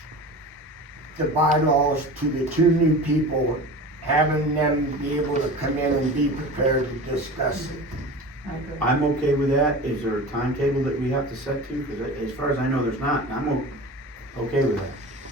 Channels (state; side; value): normal; both; correlation 0.34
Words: the bylaws to the 2 new people, having them be able to come in and be prepared to discuss it? I agree. I'm okay with that. Is there a timetable that we have to set to? Cause as far as I know, there's not, and I'm okay with that.